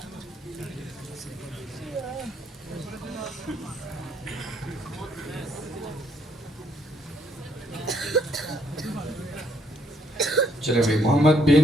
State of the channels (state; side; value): normal; both; correlation 0.69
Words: چلے بھائی، محمد بن